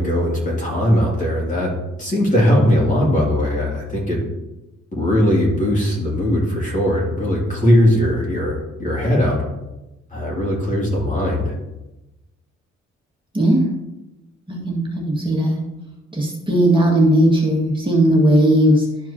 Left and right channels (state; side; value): normal; both; correlation 0.71